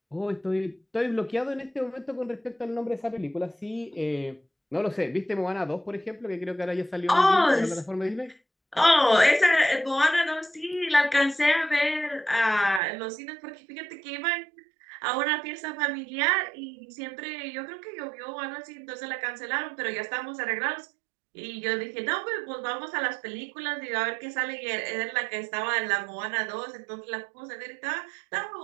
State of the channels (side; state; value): left; drops out; at 12.8 s